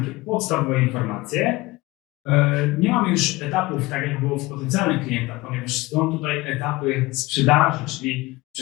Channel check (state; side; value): quieter; right; 20.7 dB